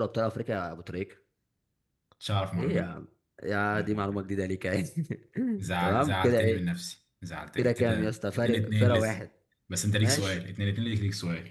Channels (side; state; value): both; identical; correlation 1.00